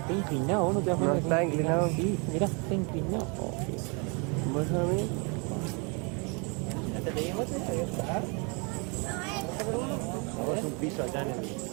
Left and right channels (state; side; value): quieter; left; 32.9 dB